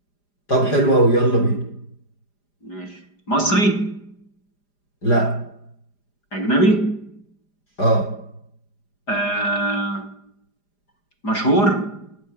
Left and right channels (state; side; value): late; right; 4.9 ms